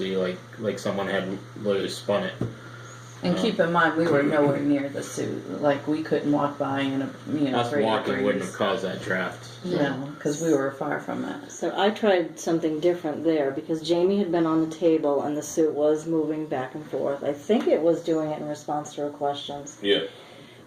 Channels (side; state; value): both; identical; correlation 1.00